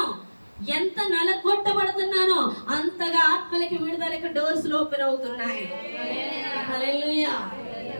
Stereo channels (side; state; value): both; inverted; correlation -1.00